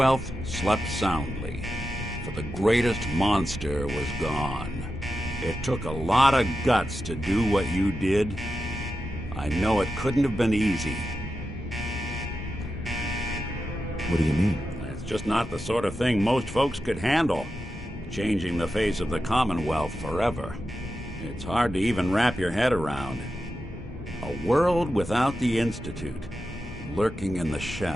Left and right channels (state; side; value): normal; both; correlation 0.90